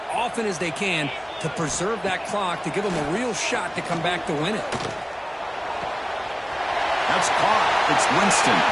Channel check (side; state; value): both; identical; correlation 1.00